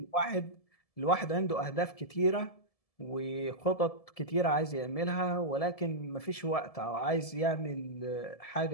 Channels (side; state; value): right; late; 1.7 ms